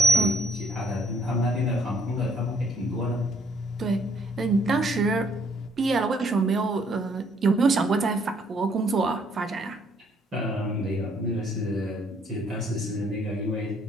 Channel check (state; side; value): normal; both; correlation 0.65